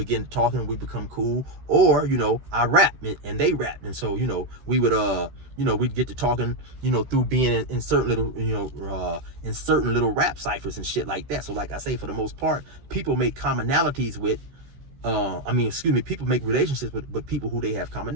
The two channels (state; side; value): late; left; 16 ms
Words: talking and we become cool, or, you know, I rap and they rap, and so, you know, we would you know, we'd get to talking, you know, through being in certain little, you know, in certain little rap ciphers and shit like that. So like I say, for the most part, people make commonalities with people make relationships with people who they have